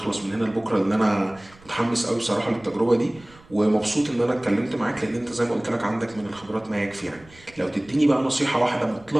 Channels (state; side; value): noise; right; rumble, 25 dB below the sound